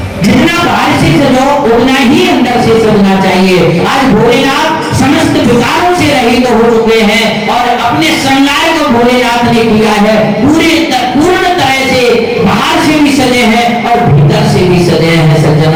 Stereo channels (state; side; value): identical; both; correlation 1.00